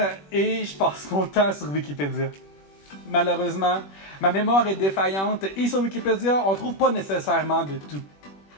et je passe mon temps sur Wikipédia. Malheureusement, ma mémoire est défaillante et sur Wikipédia, on trouve pas nécessairement de tout.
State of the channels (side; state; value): right; late; 21 ms